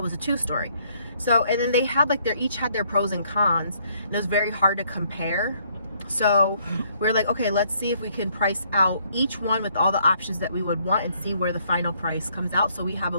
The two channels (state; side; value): inverted; both; correlation -0.67